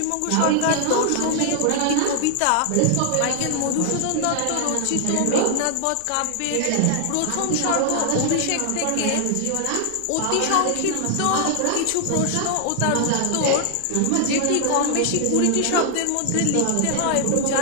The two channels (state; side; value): different; both; correlation 0.00